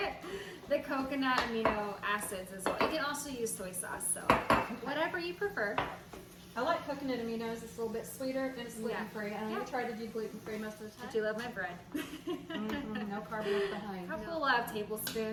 The coconut amino acids as well. You can also use soy sauce, so whatever you prefer. I like coconut aminos. It's a little bit sweeter and it's gluten-free. And Yeah. I try to do gluten-free most of the I time. do love my bread. No carb left behind. Couple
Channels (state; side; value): identical; both; correlation 1.00